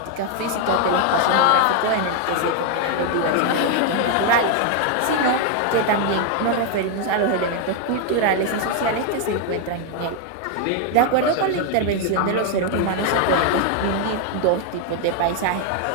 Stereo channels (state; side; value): different; both; correlation 0.00